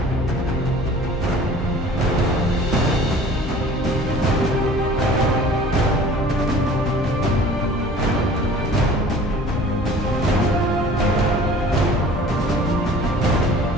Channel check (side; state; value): both; normal; correlation 0.46